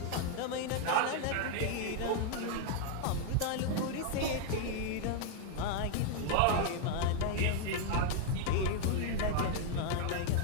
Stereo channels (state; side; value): different; both; correlation 0.00